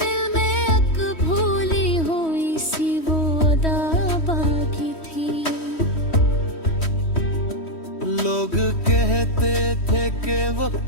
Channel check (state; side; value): late; right; 3.1 ms